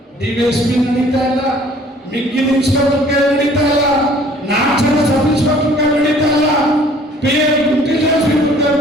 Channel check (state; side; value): normal; both; correlation 0.55